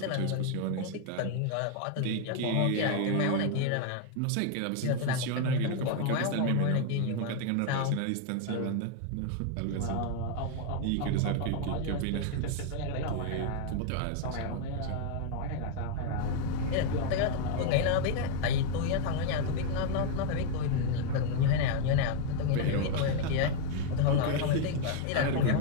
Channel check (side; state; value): both; different; correlation 0.01